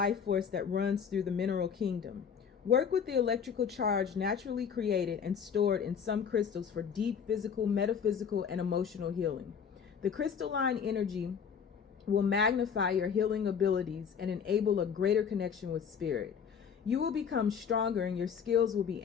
force that runs through the mineral kingdom. Work with the electrical charge naturally created and stored in some crystals for deep physical, metaphysical, and emotional healing. The crystalline energy will magnify your healing abilities and enable a greater connection with spirit. You will become stronger and your skills will be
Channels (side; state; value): right; quieter; 7.0 dB